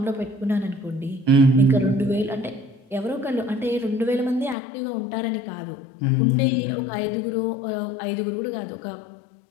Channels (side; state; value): right; drops out; at 4.5 s